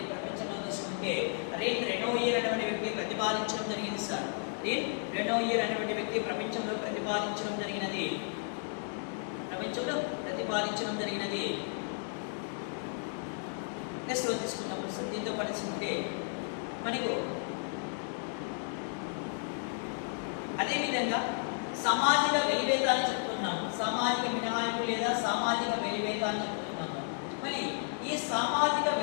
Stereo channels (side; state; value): right; silent; 56 dB below the other